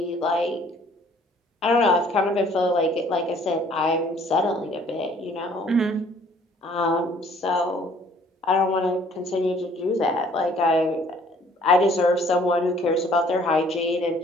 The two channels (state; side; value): normal; both; correlation 0.58